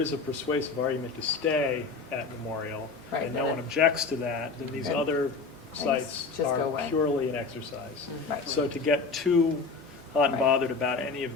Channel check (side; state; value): right; quieter; 4.4 dB